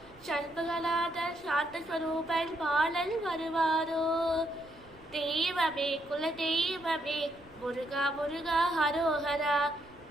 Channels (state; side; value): noise; right; rumble, 26 dB below the sound